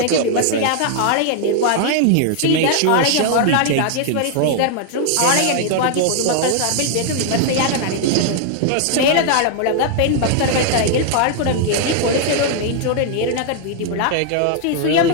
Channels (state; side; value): different; both; correlation 0.00